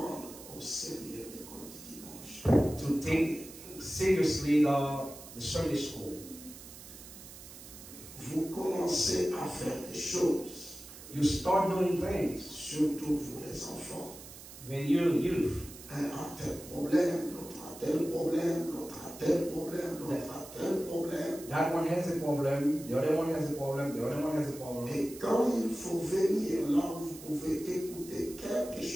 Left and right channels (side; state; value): right; noise; hiss, 16 dB below the sound